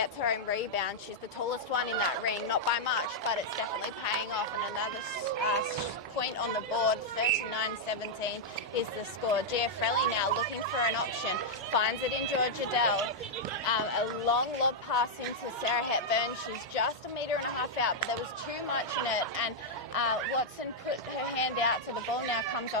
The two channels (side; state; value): both; normal; correlation -0.04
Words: her own rebound. She's the tallest one in that ring, not by much, but it's definitely paying off. And another point on the board, 39-17 is the score. Giafrelli now looking for an option, finds it in Georgia Dell. A long lob pass into Sarah Hepburn. She's just 1.5 meters out, but there was too much in it, and Watson put her hand out, so the ball now comes